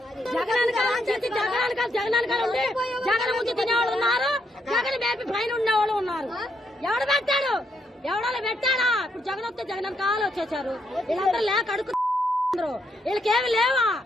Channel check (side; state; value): both; normal; correlation 0.76